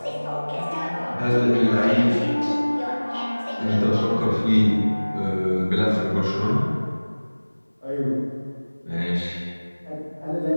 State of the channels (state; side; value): inverted; both; correlation -1.00